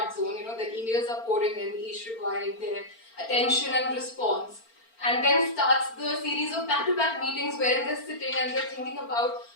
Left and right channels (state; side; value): late; right; 4.4 ms